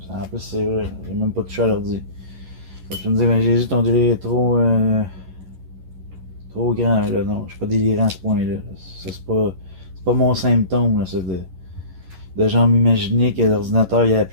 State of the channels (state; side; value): late; left; 11 ms